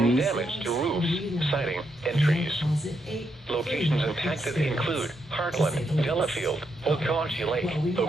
WCTV? damage to roofs, siding, and trees. Locations impacted include Heartland, Delafield, Okaushee Lake,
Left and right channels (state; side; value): normal; both; correlation 0.80